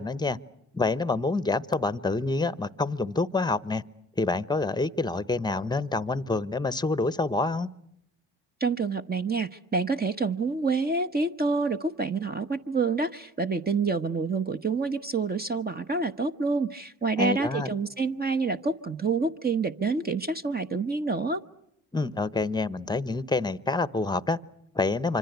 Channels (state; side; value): normal; both; correlation 0.53